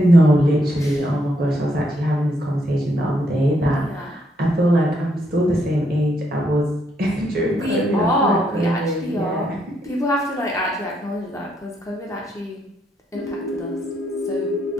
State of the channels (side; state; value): both; normal; correlation 0.76